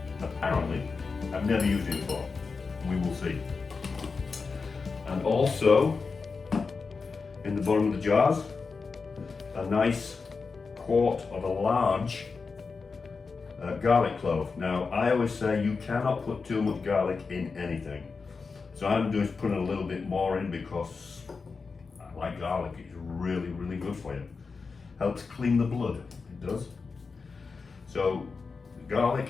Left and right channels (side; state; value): right; quieter; 4.7 dB